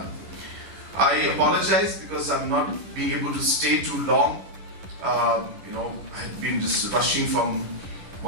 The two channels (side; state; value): left; late; 10 ms